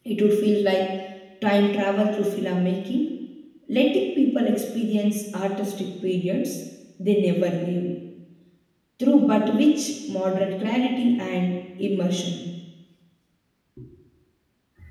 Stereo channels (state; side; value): identical; both; correlation 1.00